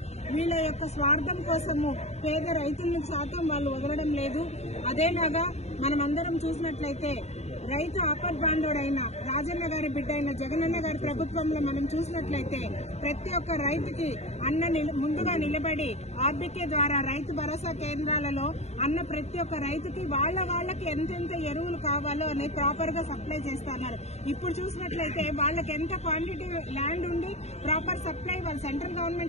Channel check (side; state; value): right; late; 0.31 ms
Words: వీళ్ళ యొక్క స్వార్థం కోసము పేద రైతులను శాతం వాళ్ళు వదలడం లేదు. అదేలాగా మనమందరం చూసినట్లయితే రైతు ఆపద్బాంధవుడైన రాజన్న గారి బిడ్డ అయిన జగనన్న గారి ప్రభుత్వంలో మనం చూసినట్లయితే ప్రతి ఒక్క రైతుకి ముందుగా నిలబడి ఆర్బీకే ద్వారా రైతు భరోసా కేంద్రాలలో ప్రతి ఒక్క రైతుకి వాళ్ళకి ఎంతెంత ఎరువులు కావాలో అని ప్రాపర్ గా సప్లై చేస్తున్నారు. ఇప్పుడు చూసినట్లయితే వాళ్ళకి ఎంత క్వాంటిటీ ల్యాండ్ ఉండి ప్రాపర్ సప్లై వాళ్ళు సెంట్రల్